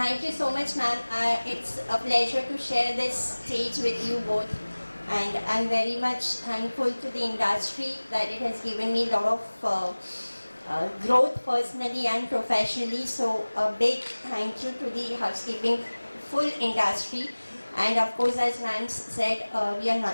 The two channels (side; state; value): both; inverted; correlation -1.00